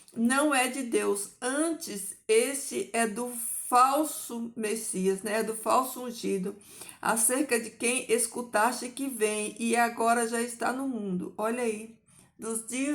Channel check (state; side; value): identical; both; correlation 1.00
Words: não é de Deus. Antes, esse é do falso Messias, né? É do falso ungido, acerca de quem escutaste que vem e agora já está no mundo. Olha aí, dos